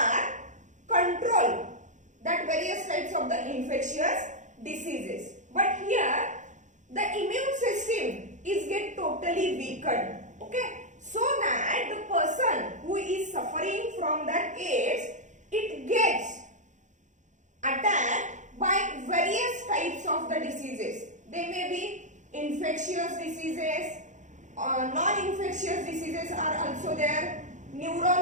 control that various types of the infectious diseases. But here the immune system is get totally weakened. Okay, so that the person who is suffering from that AIDS, it gets attacked by various types of the diseases. They may be infectious diseases, non-infectious diseases are also there,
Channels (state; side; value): late; left; 0.35 ms